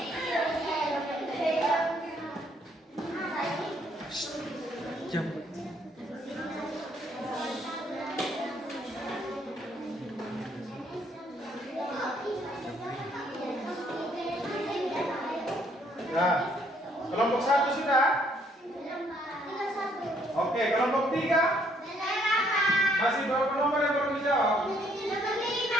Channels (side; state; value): both; normal; correlation 0.67